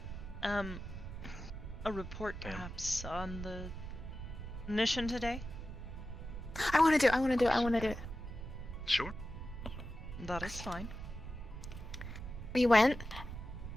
a report Ma'am. perhaps on the mission today? I want to do it. Sure. That is fine. We went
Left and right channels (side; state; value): right; noise; rumble, 9 dB below the sound